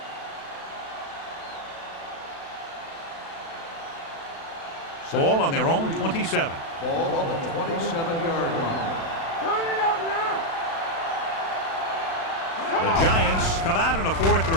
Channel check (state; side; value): late; right; 36 ms